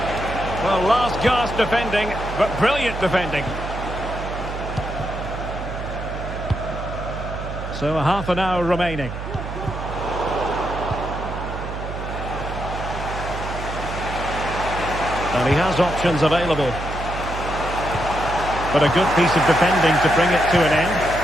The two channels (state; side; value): noise; right; hum, 7 dB below the sound